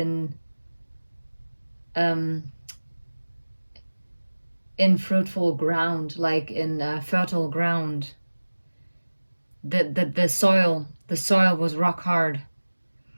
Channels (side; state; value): both; inverted; correlation -1.00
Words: fruitful ground, like in fertile ground. The soil was rock hard,